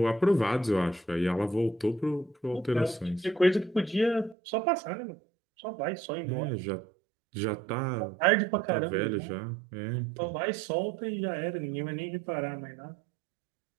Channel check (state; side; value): drops out; left; at 4.4 s